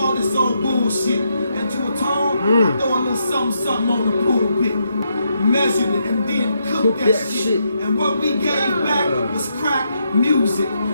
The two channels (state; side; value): inverted; both; correlation -0.80